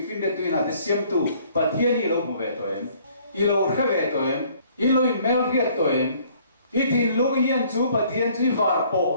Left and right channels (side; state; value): both; inverted; correlation -0.59